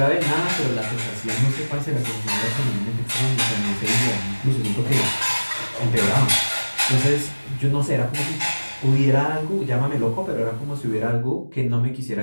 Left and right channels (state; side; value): inverted; both; correlation -1.00